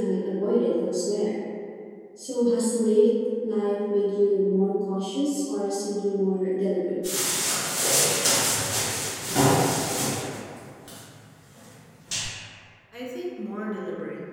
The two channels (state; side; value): identical; both; correlation 1.00